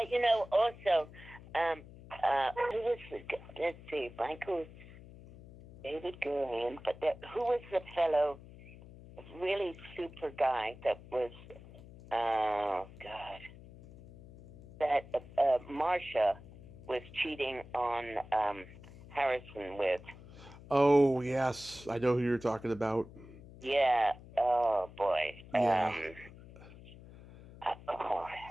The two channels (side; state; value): left; noise; hum, 18 dB below the sound